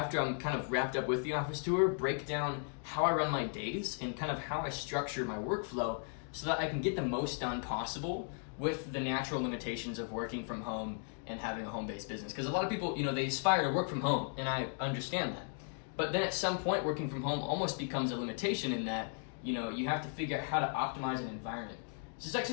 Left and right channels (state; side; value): silent; right; 54 dB below the other